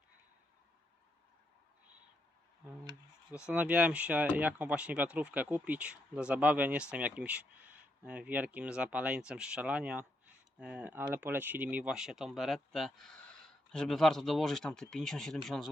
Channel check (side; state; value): both; normal; correlation 0.79